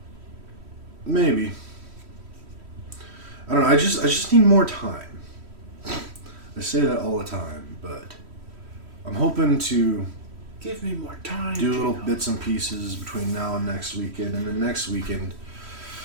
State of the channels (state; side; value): late; left; 3.1 ms